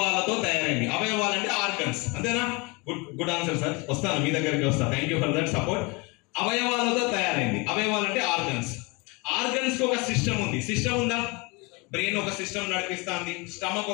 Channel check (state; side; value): quieter; right; 27.9 dB